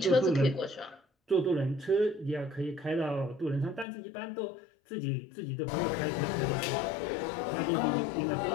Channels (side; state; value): right; drops out; at 3.9 s